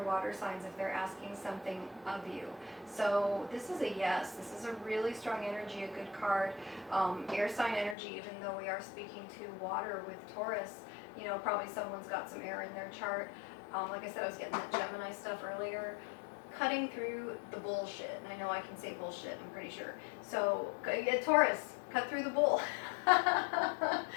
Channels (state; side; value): drops out; right; at 8.0 s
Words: water signs if they're asking something of you. So this is a yes. This is a really strong energy, a good card. Air sign energy, even though we are speaking to water with Taurus, you know, probably someone's got some air in their chart. Like I said, I was getting that Gemini stuff earlier. Cutting through the bullshit. And I know I can say bullshit, I'm pretty sure. So, Taurus, cut through the bull.